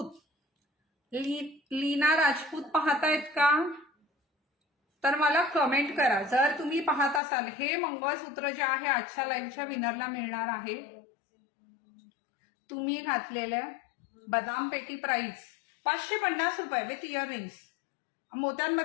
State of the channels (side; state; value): right; drops out; at 7.2 s